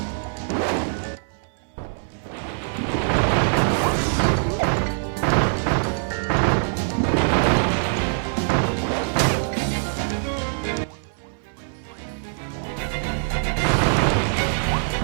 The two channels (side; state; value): left; silent; 63 dB below the other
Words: No fear. Oh, he got me.